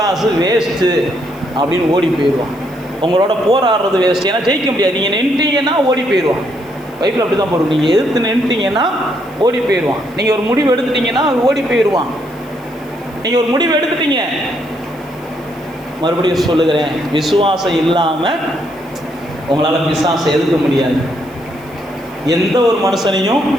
வேஸ்ட்டு அப்படின்னு ஓடி போயிடுவான். உங்களோட போராடுறது வேஸ்ட், ஏன்னா ஜெயிக்க முடியாது. நீங்கள் நின்றுட்டீங்கன்னா ஓடி போயிடுவான். பைப்பில் அப்படி தான் போடுவோம். நீங்கள் எதிர்த்து நின்றுட்டீங்கன்னா ஓடி போயிடுவான். நீங்கள் ஒரு முடிவு எடுத்துட்டீங்கன்னா ஓடி போயிடுவான். நீங்கள் ஒரு முடிவு எடுத்துட்டீங்க, மறுபடியும் சொல்லுகிறேன், விசுவாசம் இல்லாமல் உங்களால் பிசாசை எதிர்க்க முடியாது. எந்த ஒரு மனுஷனையும்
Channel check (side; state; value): right; noise; hiss, 27 dB below the sound